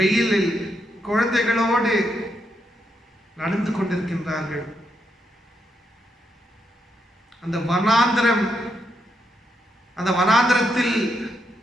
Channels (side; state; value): both; normal; correlation 0.80